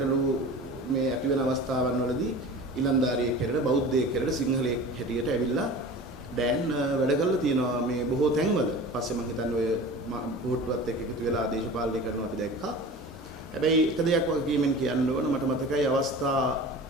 මේ ඇති වෙන අවස්ථාවන් වලදී ඉලන්දාරියෙක් හැටියට බෞද්ධයෙක් හැටියට සිංහලයෙක් හැටියට ඇවිල්ලා දැන් වැඩ කරලා තියෙනවා මේ බොහෝ තැන්වල. පස්සේ මම හිතන්නේ ඔය පොහොට්ටුවත් එක්ක එකතු වෙලා දේශපාලනය කරනවා අපි දැක්කා. හැබැයි එක දෙයක් වගකීමෙන් කියන්න ඕන මට මතකයි අවස්ථා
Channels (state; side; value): normal; both; correlation 0.37